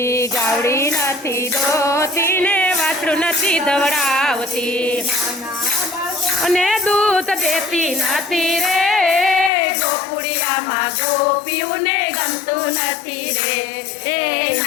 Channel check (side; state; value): right; drops out; at 9.5 s